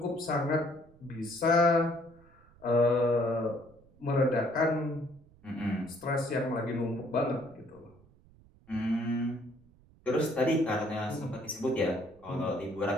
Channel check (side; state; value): right; noise; rumble, 27 dB below the sound